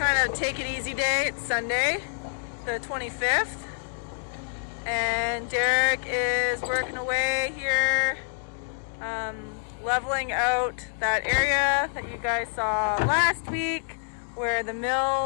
of take it easy day. It's Sunday, the 25th, and Derreck is working away here, leveling out that area that you guys saw last week, where the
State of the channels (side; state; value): right; silent; 60 dB below the other